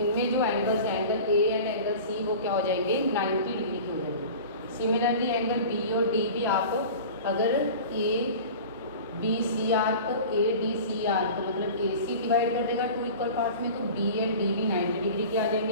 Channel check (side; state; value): both; inverted; correlation -0.37